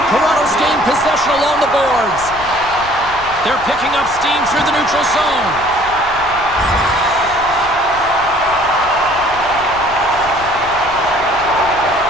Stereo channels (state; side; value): noise; left; rumble, 17 dB below the sound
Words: Toronto's gained possession along the boards. They're picking up steam through the neutral zone.